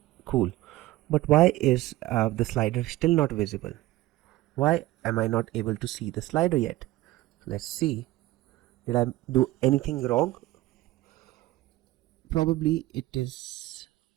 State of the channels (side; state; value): left; quieter; 17.2 dB